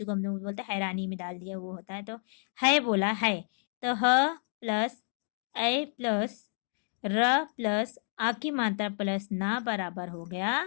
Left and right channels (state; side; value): silent; right; 58 dB below the other